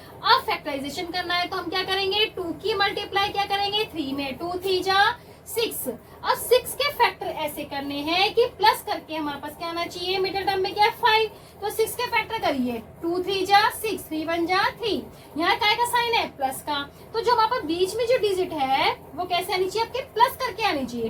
फैक्टराइजेशन करना है तो हम क्या करेंगे, 2 की मल्टीप्लाई क्या करेंगे 3 में, 2 3 जा 6। अब 6 के फैक्टर ऐसे करने हैं कि प्लस करके हमारे पास क्या आना चाहिए, मिडिल टर्म में क्या है 5, तो 6 के फैक्टर करिए, 2 3 जा 6 3 1 जा 3, यहाँ काय का साइन है प्लस का, तो जो हमारे पास बीच में जो डिजिट है वो कैसे आनी चाहिए, आपके प्लस करके आनी चाहिए,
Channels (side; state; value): both; identical; correlation 1.00